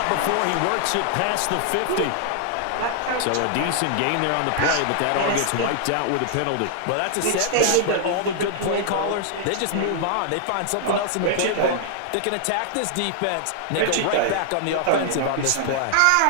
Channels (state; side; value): different; both; correlation -0.01